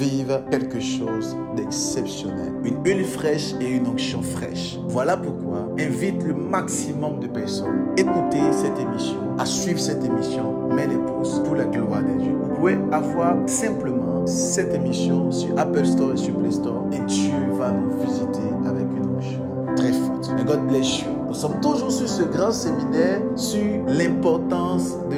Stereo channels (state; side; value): identical; both; correlation 1.00